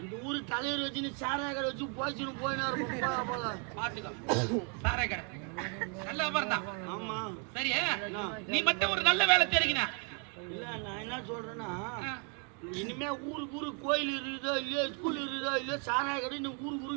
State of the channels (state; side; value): quieter; left; 38.8 dB